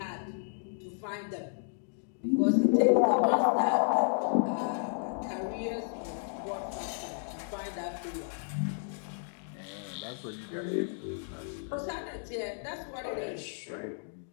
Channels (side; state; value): right; silent; digital silence